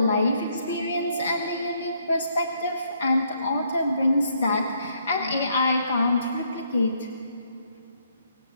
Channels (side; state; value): both; inverted; correlation -0.71